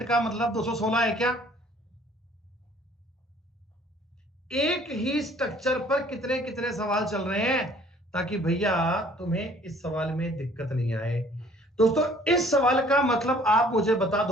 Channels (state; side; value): normal; both; correlation 0.56